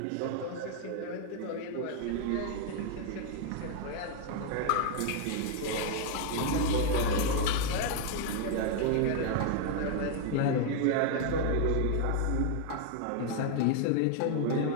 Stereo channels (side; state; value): both; different; correlation 0.00